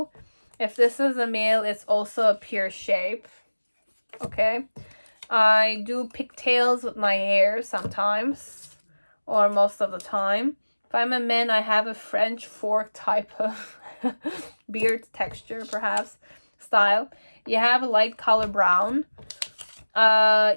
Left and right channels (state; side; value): inverted; both; correlation -1.00